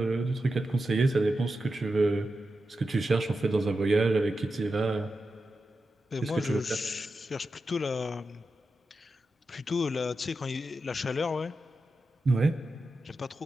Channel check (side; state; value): both; normal; correlation 0.90